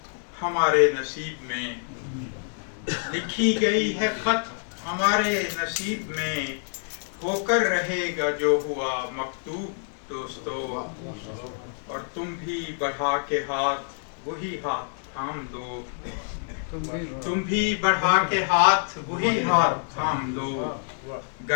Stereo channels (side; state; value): right; silent; 58 dB below the other